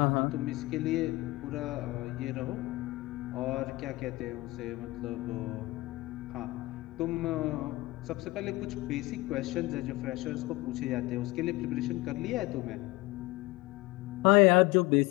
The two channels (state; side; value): quieter; right; 20.9 dB